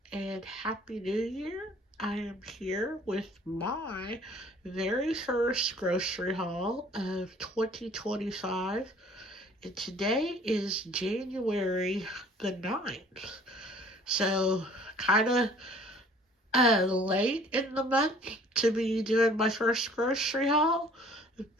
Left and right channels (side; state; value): both; normal; correlation 0.53